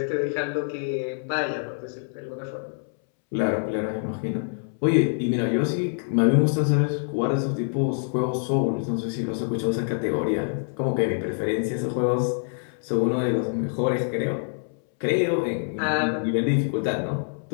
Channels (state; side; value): silent; right; 61 dB below the other